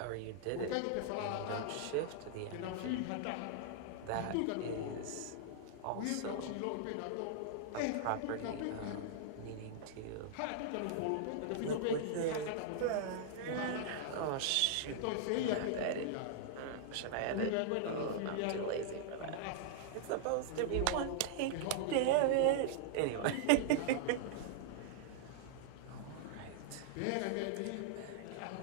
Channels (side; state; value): both; different; correlation -0.01